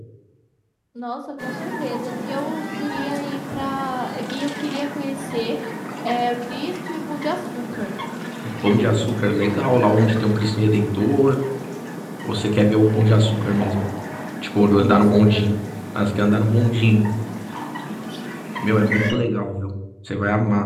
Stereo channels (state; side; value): identical; both; correlation 1.00